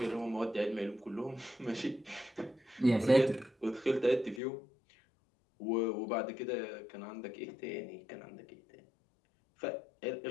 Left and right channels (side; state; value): right; drops out; at 4.4 s